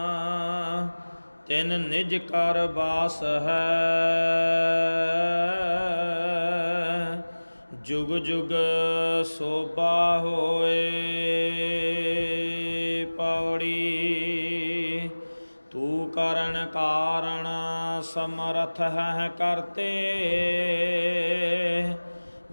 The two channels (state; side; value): inverted; both; correlation -1.00